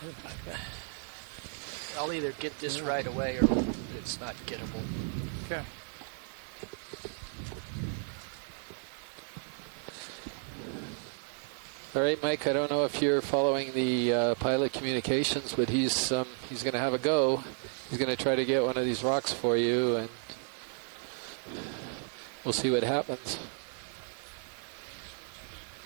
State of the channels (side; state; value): left; silent; 56 dB below the other